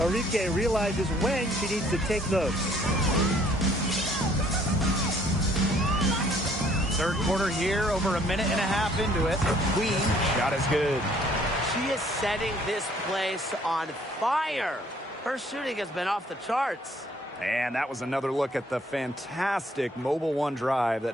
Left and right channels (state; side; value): normal; both; correlation 0.61